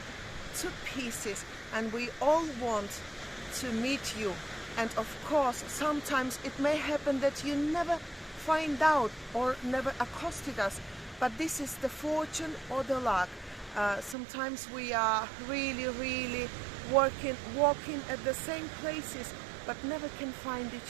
to pieces and we all want to meet you. And of course, sometimes it may happen that you never find out or never accosted us, but this is the fortune or the luck. Sometimes we are really walking at the same places, but never can find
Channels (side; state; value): left; drops out; at 14.2 s